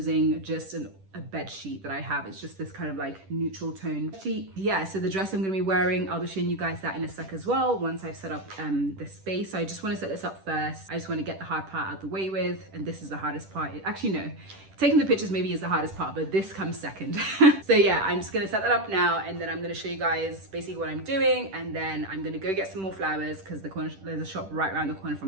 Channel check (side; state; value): left; late; 10 ms